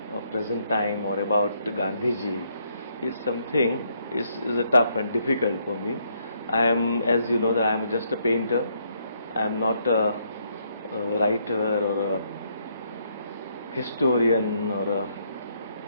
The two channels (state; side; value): inverted; both; correlation -0.73